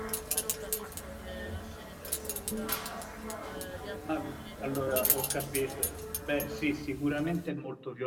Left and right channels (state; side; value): identical; both; correlation 1.00